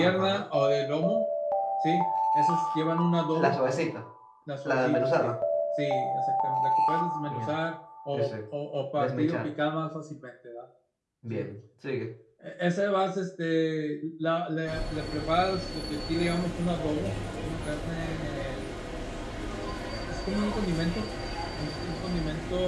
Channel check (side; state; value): both; identical; correlation 1.00